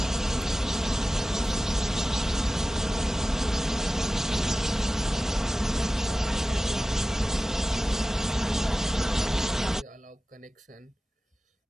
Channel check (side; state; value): both; normal; correlation 0.96